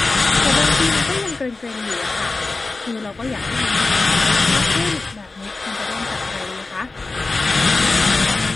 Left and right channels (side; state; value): right; quieter; 3.5 dB